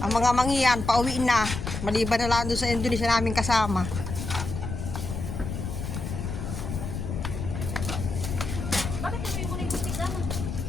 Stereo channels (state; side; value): noise; left; rumble, 5 dB below the sound